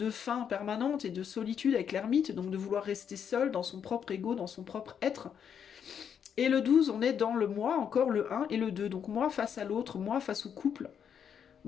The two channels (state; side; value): quieter; right; 7.9 dB